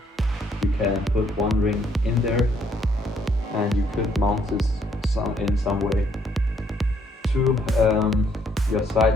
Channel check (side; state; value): both; normal; correlation 0.69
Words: you can put 1 ring in there, and you could mount this in some way to your